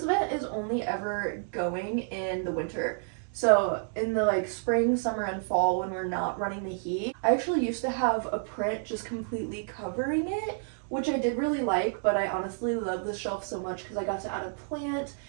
vent is only ever going in the winter. So in the like spring, summer, and fall when we're not running the heat, I actually used to have a print just completely covering it, which I did really like, but I honestly love this shelf so much because I got to add a plant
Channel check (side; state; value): left; silent; digital silence